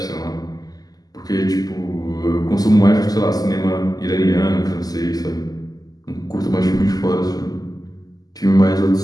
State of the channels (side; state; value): right; late; 0.18 ms